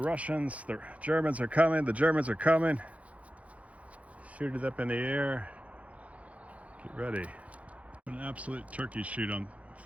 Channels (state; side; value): late; left; 0.066 ms